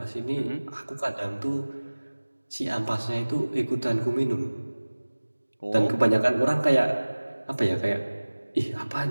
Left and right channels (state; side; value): inverted; both; correlation -1.00